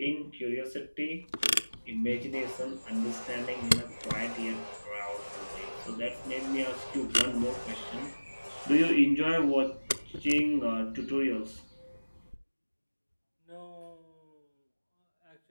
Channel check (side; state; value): both; inverted; correlation -1.00